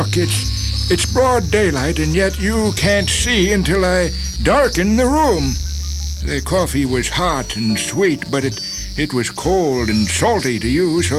it's broad daylight, and yet you can't see until I darken the room. The coffee was hot and sweet, but it was cold and salty to you,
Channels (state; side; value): identical; both; correlation 1.00